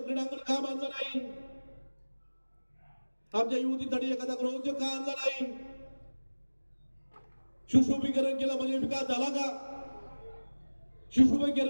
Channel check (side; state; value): both; inverted; correlation -1.00